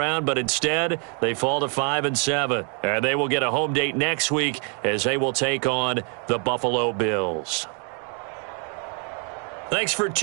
but instead they fall to 5-7. And they will get a home date next week as they will take on the Buffalo Bills. Thanks for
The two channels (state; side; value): quieter; left; 38.6 dB